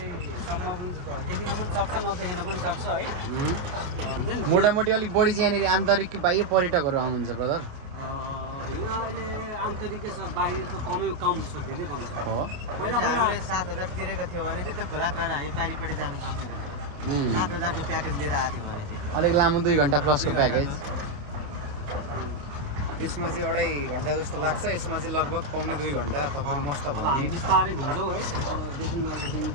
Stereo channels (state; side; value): late; left; 28 ms